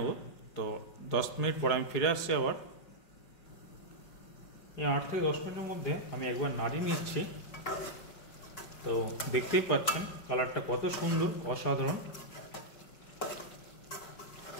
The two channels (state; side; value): late; right; 4.8 ms